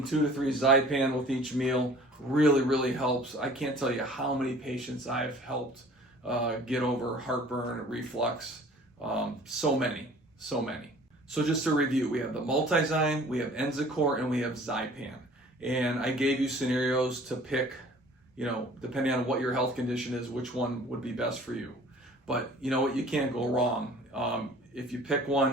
2 to 3 Zypan with each meal really, really helps. I can't tell you how many patients I've helped get over heartburn, reflux, so many. So just to review, we have the Multizyme, we have Enzycor, and we have Zypan. And I gave you scenarios to pick, depending on what your health condition is, which one would be best for you. But you know what, you can't go wrong. If you pick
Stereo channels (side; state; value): both; normal; correlation 0.49